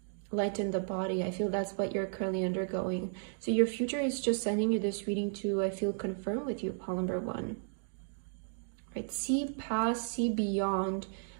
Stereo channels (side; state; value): left; silent; digital silence